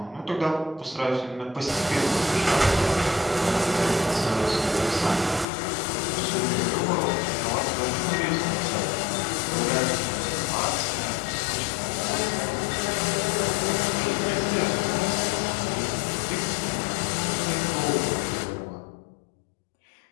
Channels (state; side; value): drops out; right; at 5.5 s